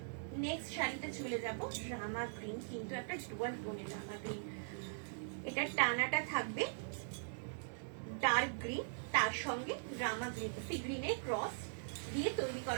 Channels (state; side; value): silent; left; digital silence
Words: নেক্সট শাড়িতে চলে যাব, রামা গ্রিন, কিন্তু একটা ডুয়াল টোনের রামা গ্রিন। এটা টানাটা থাকবে ডার্ক গ্রিন, তার সঙ্গে রামা গ্রিন, সি গ্রিনের ক্রস দিয়ে তৈরি